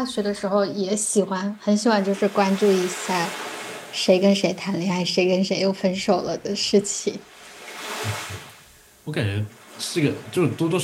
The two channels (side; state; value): both; identical; correlation 1.00